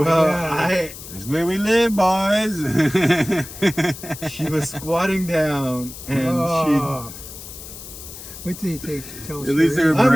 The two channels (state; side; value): noise; left; hiss, 13 dB below the sound